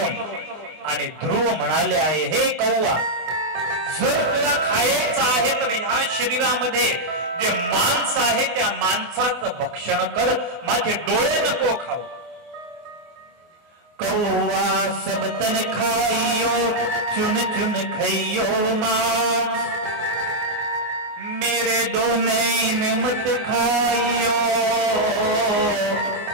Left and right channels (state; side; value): late; left; 24 ms